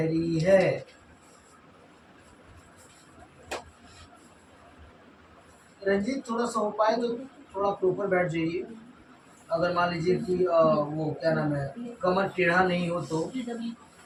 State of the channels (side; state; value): both; identical; correlation 1.00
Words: है? रंजीत, थोड़ा सा हो पाए तो थोड़ा प्रॉपर बैठ जाइए। अगर मान लीजिए कि वो क्या नाम है, कमर टेढ़ा नहीं हो तो,